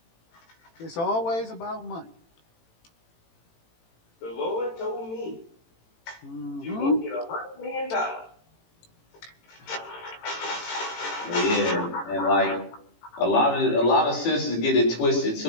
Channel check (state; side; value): late; right; 18 ms